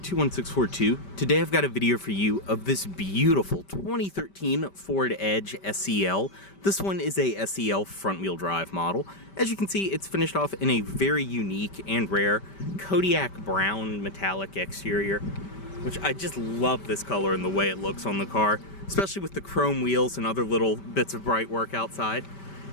Today I've got a video for you of this beautiful 2013 Ford Edge SEL. This one is a SEL front-wheel drive model. As you can see, it's finished off in a very unique and rare Kodiak brown metallic exterior, which I just love this color and the way it looks on the car, especially with the chrome wheels and other little bits of bright work outside.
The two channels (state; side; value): late; right; 5.1 ms